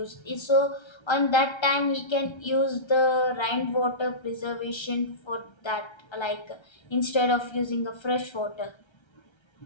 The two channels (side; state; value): right; late; 1.3 ms